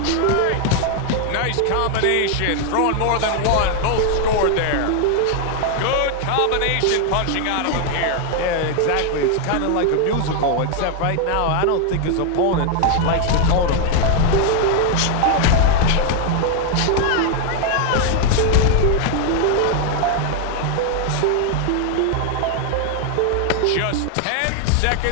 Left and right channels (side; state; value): both; different; correlation 0.00